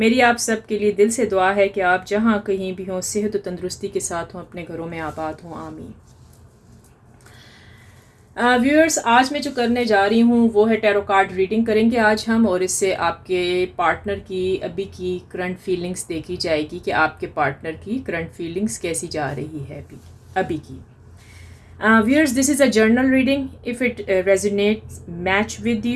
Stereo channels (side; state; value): both; identical; correlation 1.00